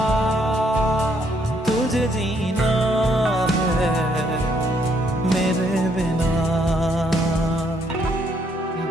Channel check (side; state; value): both; normal; correlation 0.70